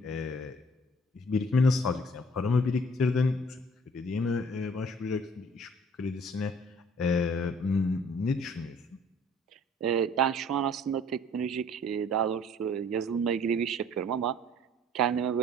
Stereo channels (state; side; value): normal; both; correlation 0.54